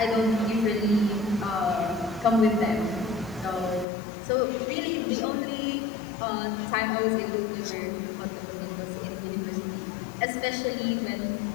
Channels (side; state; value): right; drops out; at 3.9 s